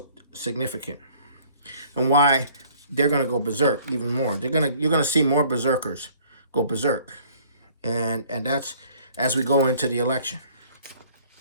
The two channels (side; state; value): both; inverted; correlation -0.56